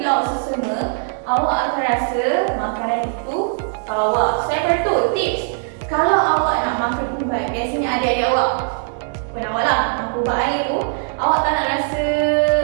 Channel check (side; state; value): left; silent; digital silence